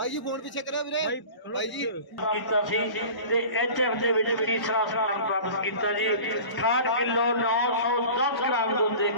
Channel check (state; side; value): late; right; 1.0 ms